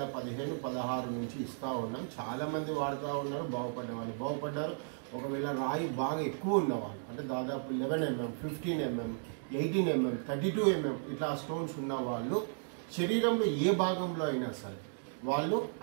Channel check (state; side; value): silent; left; digital silence